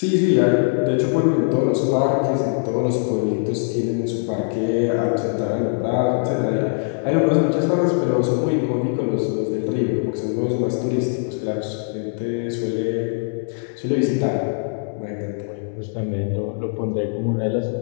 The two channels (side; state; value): right; silent; 64 dB below the other